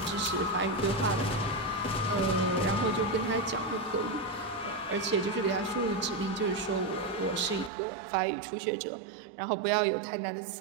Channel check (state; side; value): drops out; left; at 7.7 s